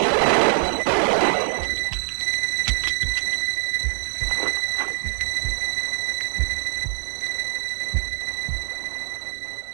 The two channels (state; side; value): silent; left; 63 dB below the other